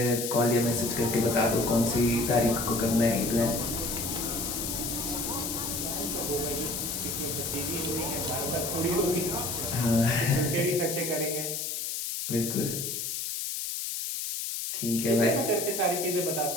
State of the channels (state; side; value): noise; left; hiss, 3 dB below the sound